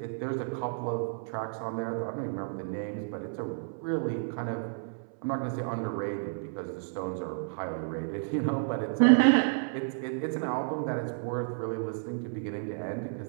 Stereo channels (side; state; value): left; silent; 57 dB below the other